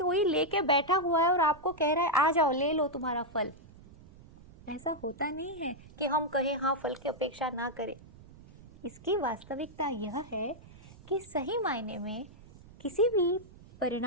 लेके बैठा हुआ है और आपको कह रहा है आ जाओ ले लो तुम्हारा फल। ऐसा होता नहीं है कि हम कहें हाँ फल की अपेक्षा ना करें। इसकी वास्तविकता यह है कि सही मायने में किसी भी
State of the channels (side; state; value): right; noise; rumble, 21 dB below the sound